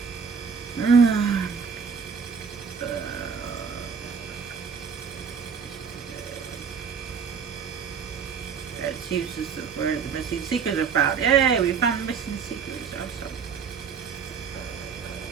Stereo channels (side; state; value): left; quieter; 6.2 dB